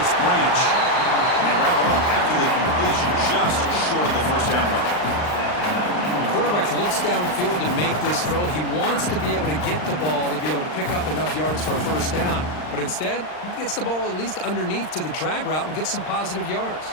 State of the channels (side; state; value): right; late; 39 ms